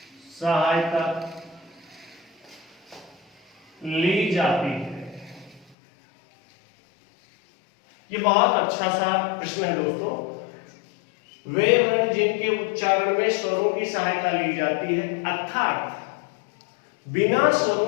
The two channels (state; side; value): drops out; right; at 5.8 s